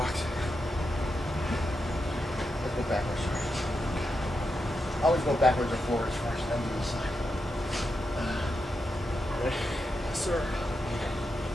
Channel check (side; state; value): both; normal; correlation 0.86